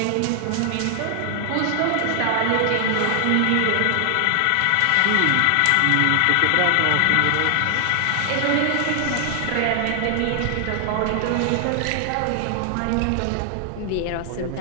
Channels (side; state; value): both; different; correlation 0.00